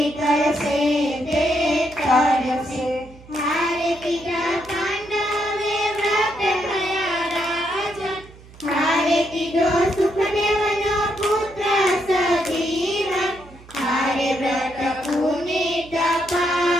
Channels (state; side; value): noise; right; hum, 21 dB below the sound